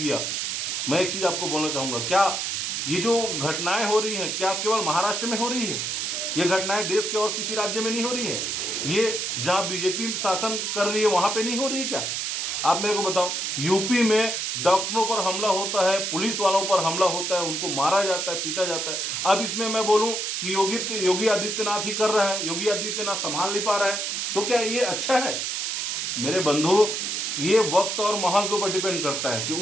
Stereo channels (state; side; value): noise; right; hiss, 1 dB below the sound